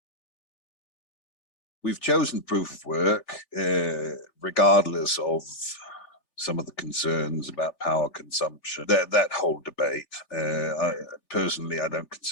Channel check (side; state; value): right; late; 5.0 ms